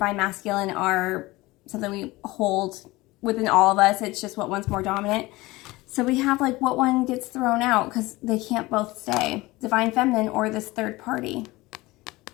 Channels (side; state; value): right; quieter; 20.5 dB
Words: Masculine are something we hold within all of us. It's just what one's more dominant. So we have like what one gets thrown out because they can't both stay. Divine Feminine or this third party.